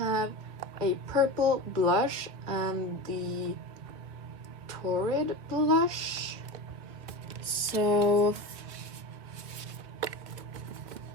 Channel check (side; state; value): left; late; 1.9 ms